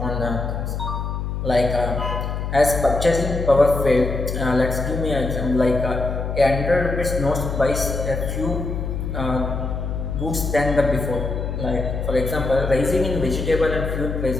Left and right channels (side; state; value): left; noise; hum, 3 dB below the sound